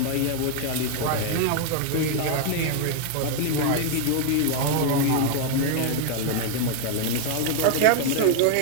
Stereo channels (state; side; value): different; both; correlation 0.00